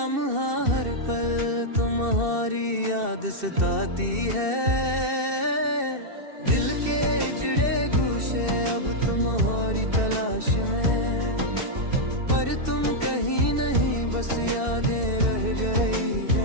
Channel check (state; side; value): late; left; 2.7 ms